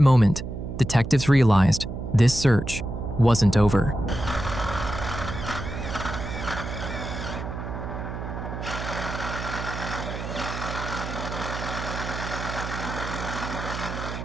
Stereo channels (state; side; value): noise; right; hum, 6 dB below the sound